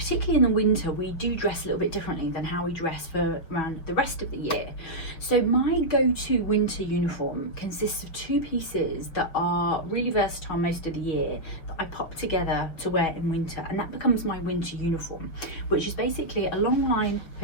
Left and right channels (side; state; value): right; late; 6.0 ms